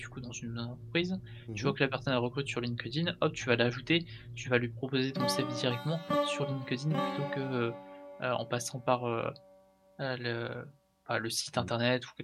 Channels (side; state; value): both; identical; correlation 1.00